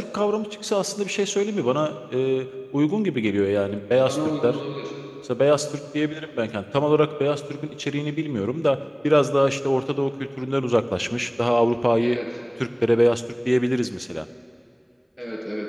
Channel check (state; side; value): identical; both; correlation 1.00